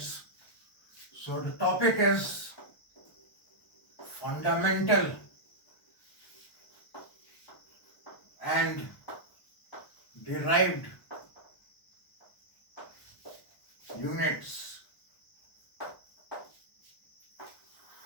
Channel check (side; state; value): right; late; 1.0 ms